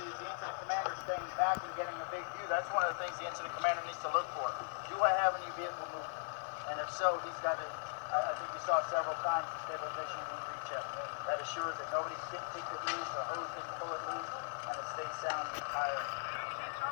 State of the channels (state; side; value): silent; right; digital silence